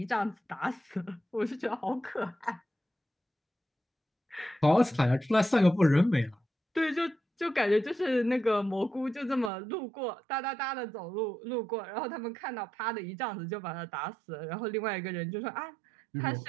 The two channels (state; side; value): drops out; left; at 9.5 s